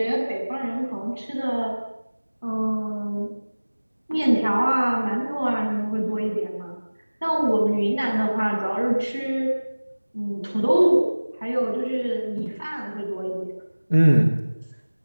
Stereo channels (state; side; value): inverted; both; correlation -1.00